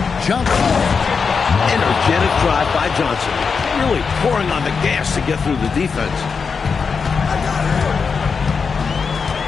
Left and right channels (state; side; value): quieter; right; 5.5 dB